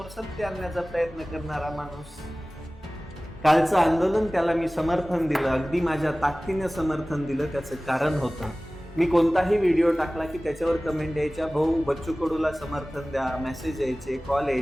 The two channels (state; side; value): normal; both; correlation 0.98